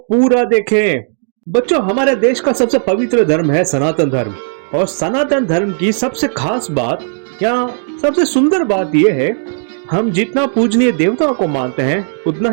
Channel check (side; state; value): left; silent; digital silence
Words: पूरा देखें। बच्चों, हमारे देश का सबसे पवित्र धर्म है सनातन धर्म, और सनातन धर्म की सबसे खास बात या सबसे सुंदर बात यह है, हम जितना पूजनीय देवताओं को मानते हैं उतना